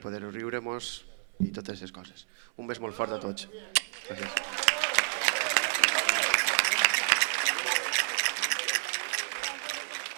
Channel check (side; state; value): left; silent; 58 dB below the other